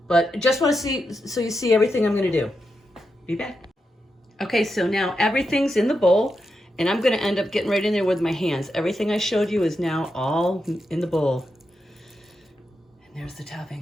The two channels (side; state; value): both; normal; correlation 0.86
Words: But just want to see, so you see everything I'm going to do. Be back. Okay, so now everything's in the bowl, and I'm going to end up getting right in there with my hands. Everything I showed you is now all in the bowl. And there's the